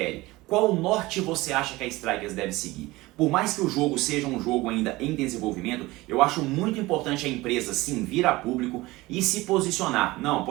Qual norte você acha que a Strikers deve seguir? Por mais que o jogo seja um jogo ainda em desenvolvimento, eu acho muito importante a empresa sim vir a público e se posicionar. Não,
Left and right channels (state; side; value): quieter; left; 20.1 dB